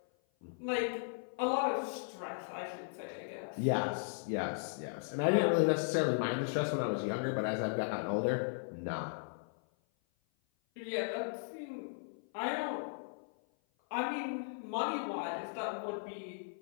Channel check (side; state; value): right; silent; 53 dB below the other